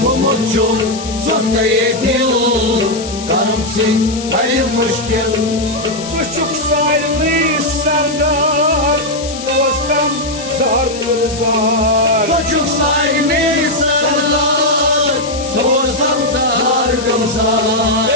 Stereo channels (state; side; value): noise; left; hiss, 12 dB below the sound